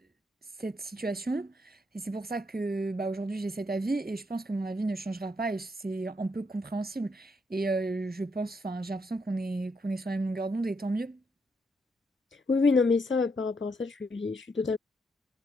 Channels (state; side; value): normal; both; correlation 0.77